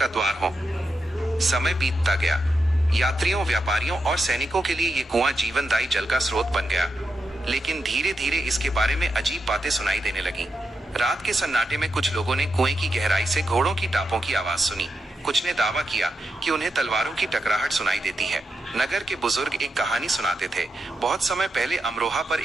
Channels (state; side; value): normal; both; correlation 0.86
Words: द्वार हो। समय बीतता गया। यात्रियों, व्यापारियों और सैनिकों के लिए ये कुआं जीवनदायी जल का स्रोत बन गया। लेकिन धीरे धीरे इसके बारे में अजीब बातें सुनाई देने लगीं। रात के सन्नाटे में कुछ लोगों ने कुएं की गहराई से घोड़ों की टापों की आवाज सुनी। कुछ ने दावा किया कि उन्हें तलवारों की टकराहट सुनाई देती है। नगर के बुजुर्ग एक कहानी सुनाते थे। बहुत समय पहले अमरोहा पर